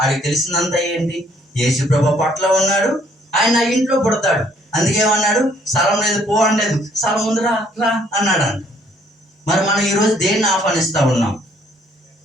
ఆడికి తెలిసిందంతా ఏంటి? యేసుప్రభు పట్ల ఉన్నాడు, ఆయన నా ఇంట్లో పుడతాడు, అందుకేమన్నాడు? స్థలం లేదు, పో అనలేదు, స్థలం ఉంది, రా రా అన్నాడు అంట. మరి మనం ఈరోజు దేన్ని ఆహ్వానిస్తూ ఉన్నాం?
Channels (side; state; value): both; normal; correlation 0.64